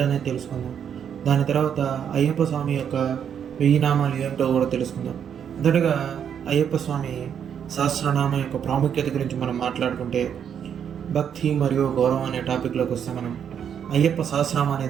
తెలుసుకుందాం. దాని తర్వాత అయ్యప్ప స్వామి యొక్క 1000 నామాలు ఏంటో కూడా తెలుసుకుందాం. మొదటగా అయ్యప్ప స్వామి సహస్రనామం యొక్క ప్రాముఖ్యత గురించి మనం మాట్లాడుకుంటే, భక్తి మరియు గౌరవం అనే టాపిక్లోకి వస్తే, మనం అయ్యప్ప సహస్రనామం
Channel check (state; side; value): quieter; left; 8.3 dB